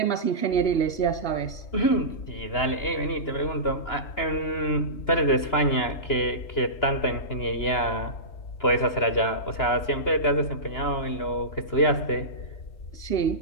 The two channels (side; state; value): right; late; 2.9 ms